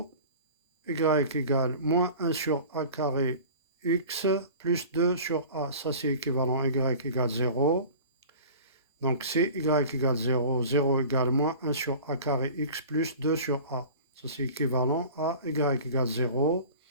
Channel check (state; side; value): inverted; both; correlation -0.40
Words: y égale moins 1 sur A carré x plus 2 sur A. Ça, c'est équivalent y égale 0. Donc, c'est y égale 0. 0 égale moins 1 sur A carré x plus 2 sur A. Ça, c'est équivalent à y égale 0.